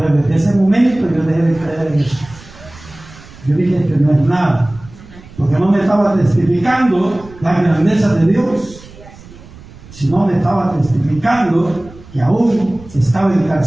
desde ese momento yo dejé de creer en eso. Yo dije que no es nada. Porque no me estaba testificando la grandeza de Dios, sino me estaba testificando que aún estaba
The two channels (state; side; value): noise; right; rumble, 20 dB below the sound